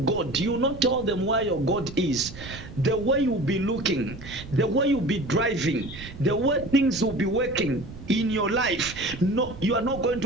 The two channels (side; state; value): right; noise; rumble, 14 dB below the sound